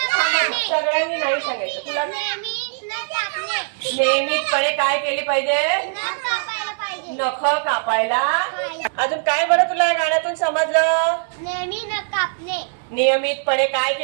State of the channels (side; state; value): left; silent; digital silence